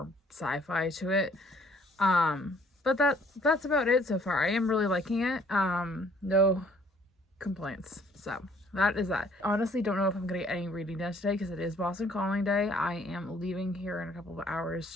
sci-fi to it. But that's about it so far. I am really liking it. No complaints. So that is that. Honestly, don't know if I'm going to get any reading done today, because it is Boston Calling Day. I am leaving here in a couple of hours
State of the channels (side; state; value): both; normal; correlation 0.60